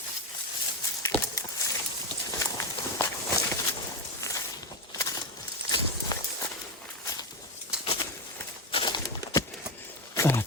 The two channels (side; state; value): both; normal; correlation 0.14